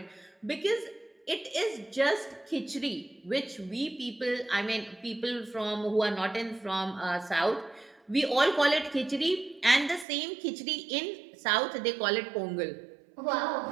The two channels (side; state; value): left; drops out; at 10.1 s